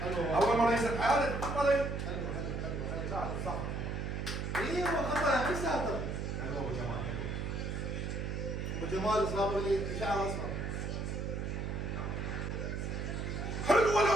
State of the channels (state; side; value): noise; right; hum, 3 dB below the sound